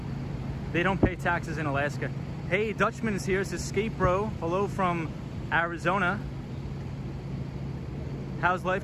They don't pay taxes in Alaska. Hey, Dutchman is here, says Skate Bro. Hello from Arizona. How's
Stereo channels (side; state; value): both; identical; correlation 1.00